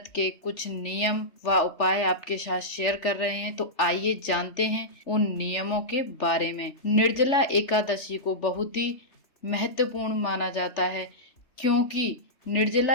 के कुछ नियम व उपाय आपके साथ शेयर कर रहे हैं। तो आइए जानते हैं उन नियमों के बारे में। निर्जला एकादशी को बहुत ही महत्वपूर्ण माना जाता है, क्योंकि निर्जला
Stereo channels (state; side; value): late; right; 3.4 ms